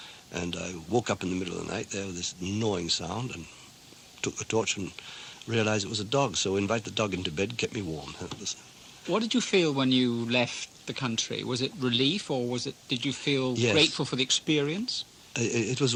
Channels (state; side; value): identical; both; correlation 1.00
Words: And I woke up in the middle of the night there with this gnawing sound and took the torch and realized it was a dog. So invited the dog into bed, kept me warm. What did you feel when you left the country? Was it relief, or did you feel grateful for the experience? It